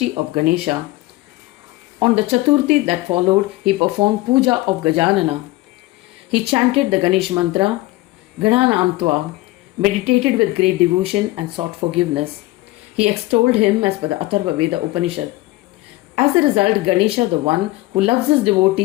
of Ganesha. On the Chaturthi that followed, he performed puja of Gajanana. He chanted the Ganesh mantra, Gananamtva, meditated with great devotion and sought forgiveness. He extolled him as per the Atharva Veda Upanishad. As a result, Ganesha, the one who loves his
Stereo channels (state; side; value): quieter; right; 19.0 dB